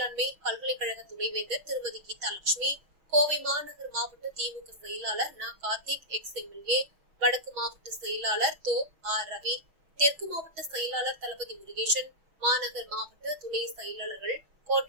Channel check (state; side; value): late; left; 6.2 ms